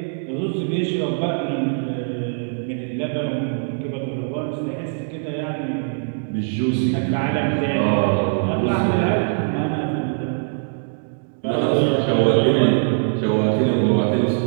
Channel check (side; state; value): left; silent; digital silence